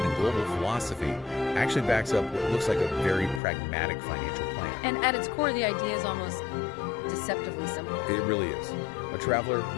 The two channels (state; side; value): drops out; right; at 3.4 s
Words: and global philosophy actually backs up what looks like a very pragmatic financial plan. And at its core, the idea is almost deceptively simple. It really is. A traveler,